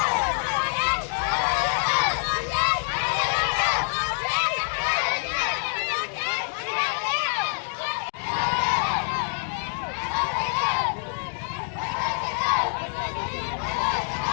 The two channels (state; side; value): silent; right; 61 dB below the other